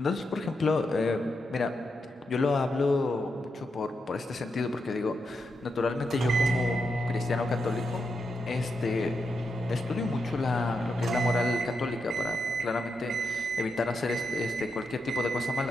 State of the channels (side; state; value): both; normal; correlation 0.85